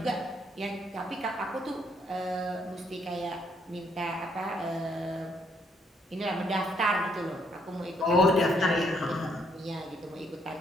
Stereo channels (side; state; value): both; normal; correlation 0.71